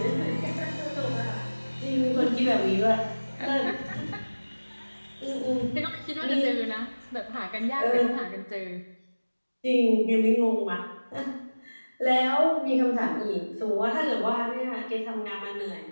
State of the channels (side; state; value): both; inverted; correlation -1.00